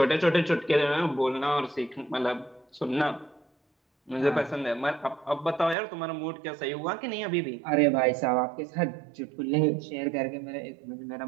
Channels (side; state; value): left; drops out; at 5.8 s